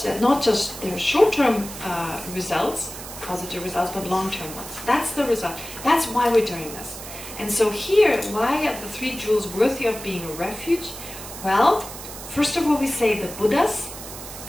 that not just their short-term results, positive results, but long-term ones. That's the result. That's why we're doing this. And so here, why are the 3 jewels worthy of being a refuge? Well, first of all, we say the Buddhas,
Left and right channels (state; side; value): noise; right; hiss, 12 dB below the sound